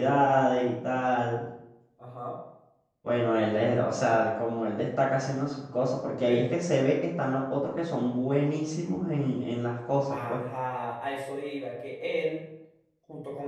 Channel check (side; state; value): both; identical; correlation 1.00